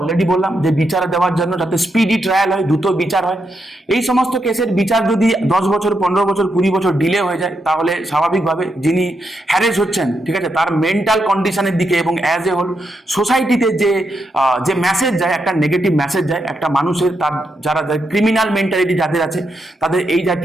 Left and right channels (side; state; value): both; normal; correlation 0.82